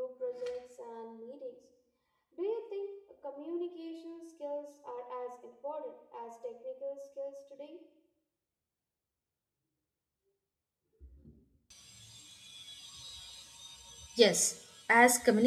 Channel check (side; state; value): both; identical; correlation 1.00